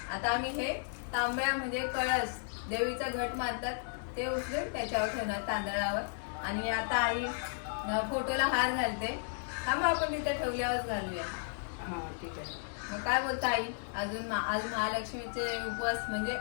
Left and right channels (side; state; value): right; silent; digital silence